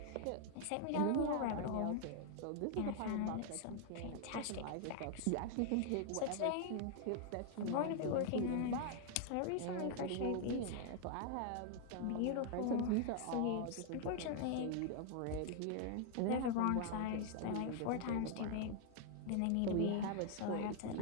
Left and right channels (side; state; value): both; different; correlation 0.00